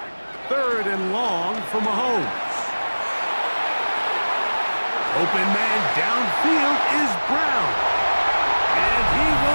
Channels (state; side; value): inverted; both; correlation -1.00